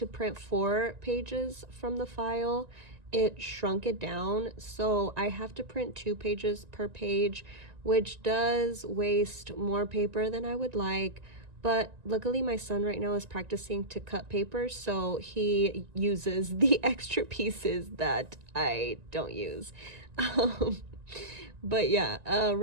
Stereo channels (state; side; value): late; left; 1.9 ms